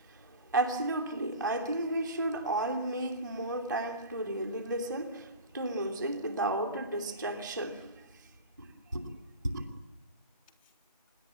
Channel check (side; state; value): both; inverted; correlation -0.33